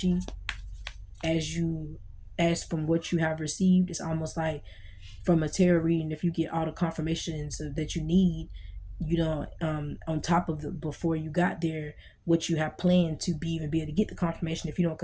as from what you have received, it's almost like from a tarot reading, if you get all the confirmations that you need, you know, on top of the before you got there, what you have planned to be able to get the confirmation. If you don't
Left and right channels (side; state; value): both; identical; correlation 1.00